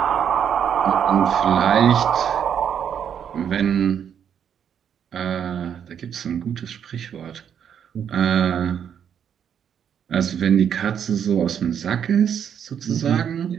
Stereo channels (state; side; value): quieter; left; 8.4 dB